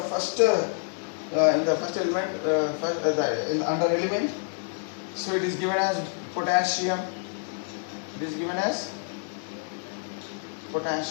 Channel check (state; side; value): silent; right; 60 dB below the other